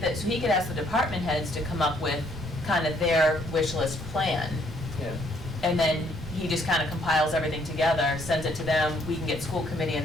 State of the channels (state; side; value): normal; both; correlation 0.67